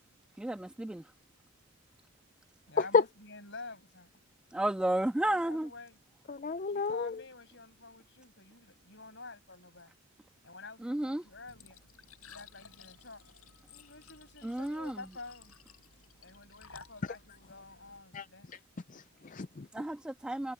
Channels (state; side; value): normal; both; correlation 0.44